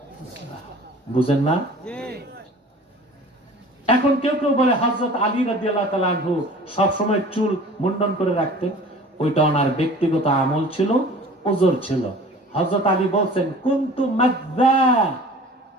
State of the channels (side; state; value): both; normal; correlation 0.44